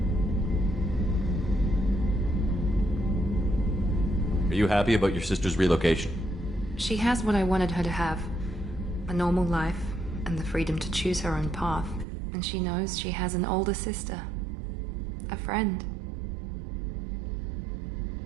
Are you happy about your sister's relocation? She has what I wanted her to have. A normal life, and the freedom to choose her own path. And she knows she has an older sister. A friend.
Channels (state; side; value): drops out; left; at 12.1 s